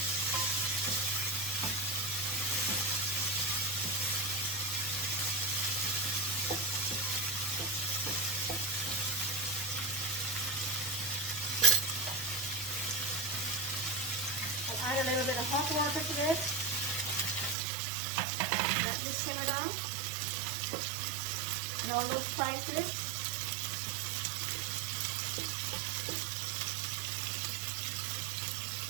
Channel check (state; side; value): drops out; left; at 17.6 s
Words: Add a little bit of hot water to this. Let this simmer down. And all those spices.